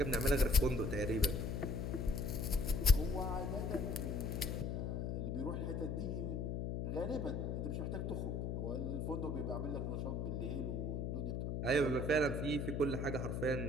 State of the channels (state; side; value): noise; left; hum, 1 dB below the sound